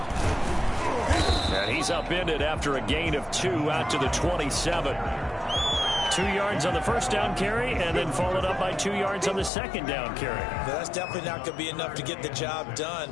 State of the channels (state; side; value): drops out; right; at 9.5 s